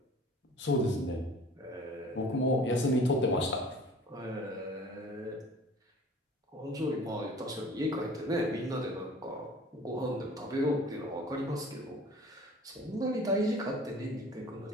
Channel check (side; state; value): both; normal; correlation 0.47